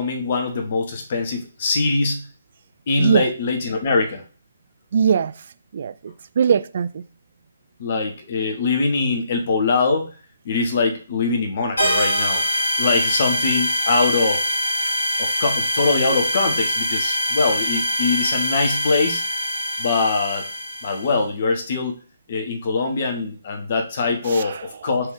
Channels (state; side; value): inverted; both; correlation -0.72